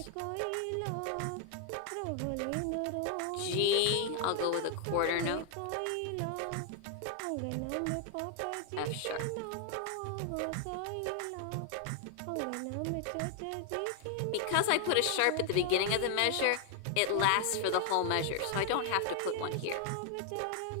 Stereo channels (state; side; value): different; both; correlation 0.00